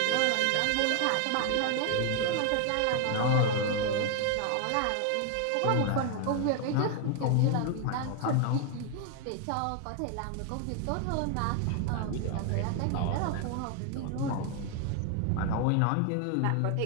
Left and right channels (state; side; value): different; both; correlation 0.00